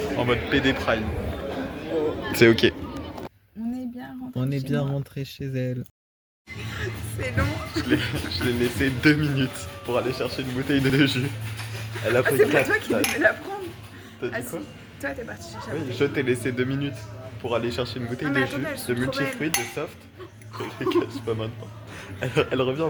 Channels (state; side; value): identical; both; correlation 1.00